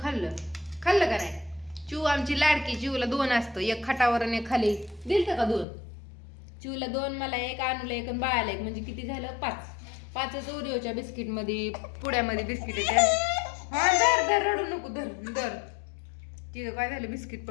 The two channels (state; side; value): drops out; right; at 5.7 s